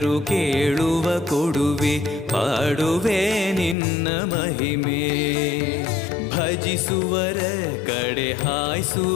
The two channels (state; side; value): drops out; right; at 3.8 s